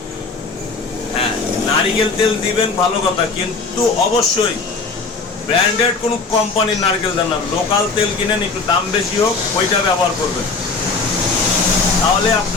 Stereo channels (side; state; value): right; quieter; 4.2 dB